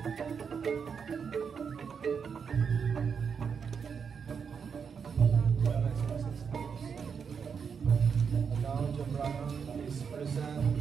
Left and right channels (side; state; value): left; quieter; 6.4 dB